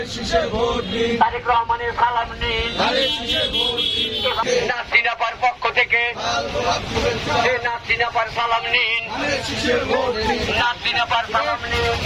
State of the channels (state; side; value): identical; both; correlation 1.00